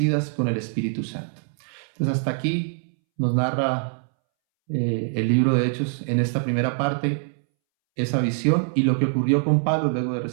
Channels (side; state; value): left; silent; 63 dB below the other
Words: con el Espíritu Santo. Entonces hasta aquí nos narra el libro de Hechos en esta primera parte, esa visión y lo que ocurrió con Pablo luego de